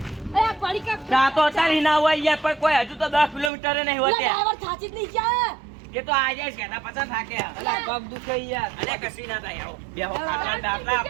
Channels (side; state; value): left; drops out; at 3.5 s